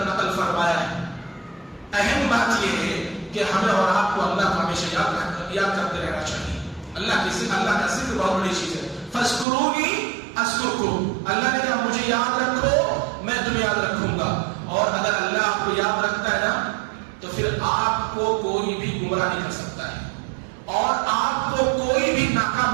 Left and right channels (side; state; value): left; drops out; at 9.5 s